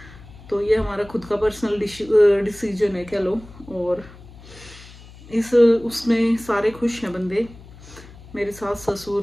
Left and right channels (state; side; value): noise; left; hum, 20 dB below the sound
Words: तो ये हमारा खुद का पर्सनल डिसीजन है कह लो। और इस उसमें सारे खुश हैं बंदे, मेरे सास